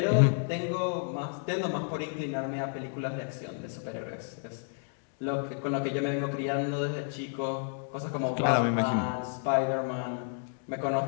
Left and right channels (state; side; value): silent; right; 57 dB below the other